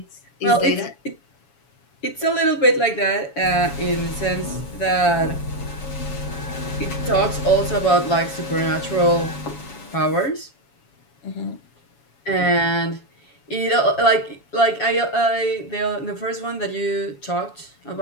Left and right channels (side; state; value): right; late; 7.2 ms